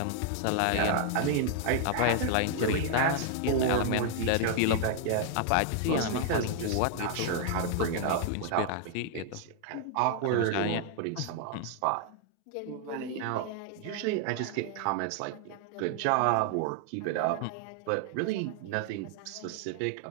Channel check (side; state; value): both; different; correlation 0.00